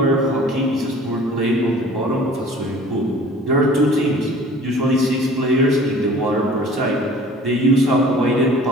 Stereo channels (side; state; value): both; normal; correlation 0.47